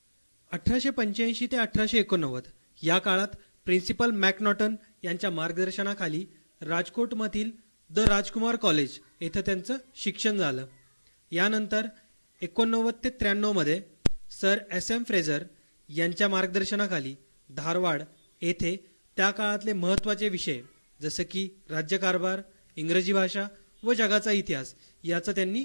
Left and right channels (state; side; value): inverted; both; correlation -1.00